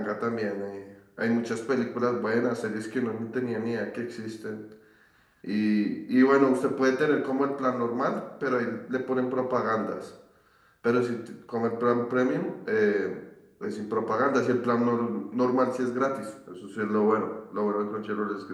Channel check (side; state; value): both; identical; correlation 1.00